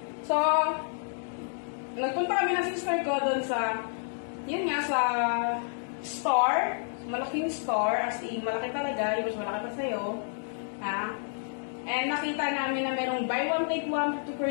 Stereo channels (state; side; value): silent; right; digital silence